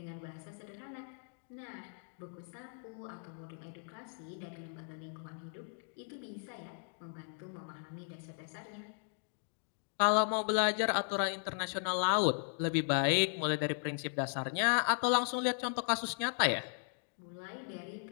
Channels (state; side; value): silent; right; 53 dB below the other